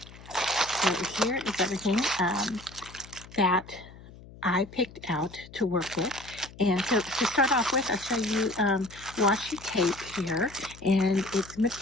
so here is everything that I picked out to work with. And so to start off with, I'll show you washi tape here, and it's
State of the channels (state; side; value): noise; left; hum, 19 dB below the sound